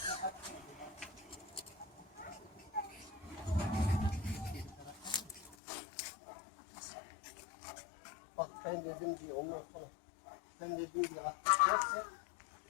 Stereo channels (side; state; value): right; drops out; at 5.6 s